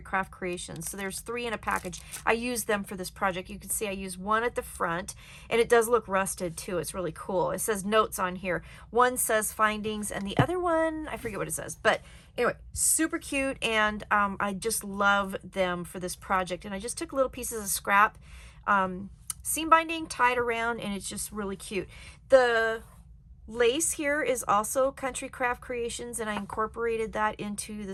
Craft Creations. So there's 3 in a package. I used them for this project. You can see I used one at the front, and it does look rusted too. It's really cool. It says notes on here. One says findings, and the other one, I forget what it says, but anyway, super cute, and I just love them for this project. And I just took little pieces of scrap seam binding, tied around, and it's just really cute. The lace here is also Country Craft Creations, and I incorporated that into the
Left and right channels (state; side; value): identical; both; correlation 1.00